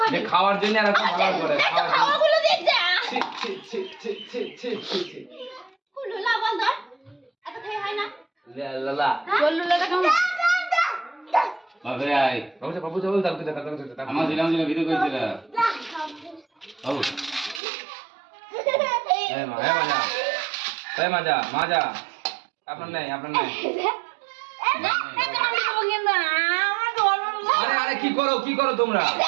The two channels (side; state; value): left; drops out; at 17.6 s